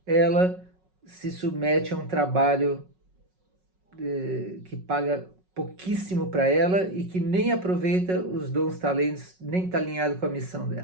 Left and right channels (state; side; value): late; left; 5.4 ms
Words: ela se submete a um trabalho que paga pouquíssimo para ela e que nem aproveita os dons, talentos, nem está alinhado com a missão